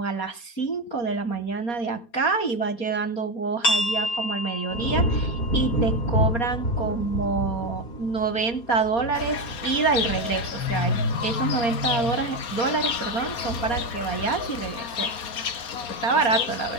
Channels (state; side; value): late; right; 4.3 ms